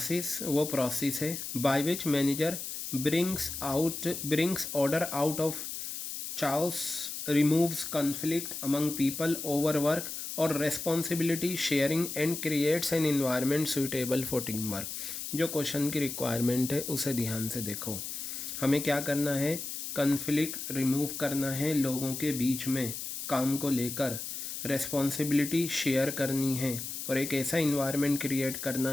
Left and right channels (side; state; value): left; noise; hiss, 6 dB below the sound